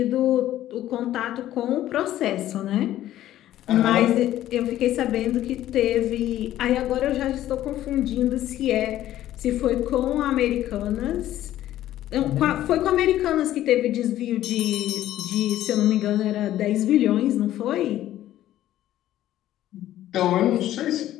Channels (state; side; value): quieter; right; 13.3 dB